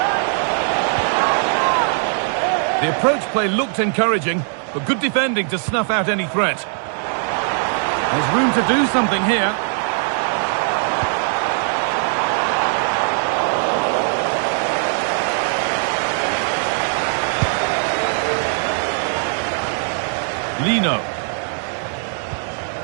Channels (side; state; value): left; silent; 60 dB below the other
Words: The approach play looked encouraging, but good defending to snuff out any threat. There's room to do something here. Lino.